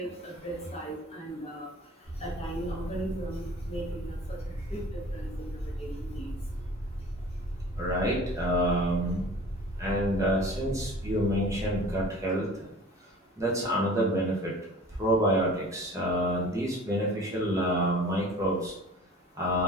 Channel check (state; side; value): normal; both; correlation 0.44